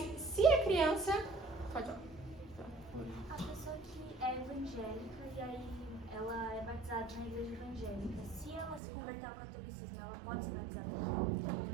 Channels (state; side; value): drops out; left; at 8.8 s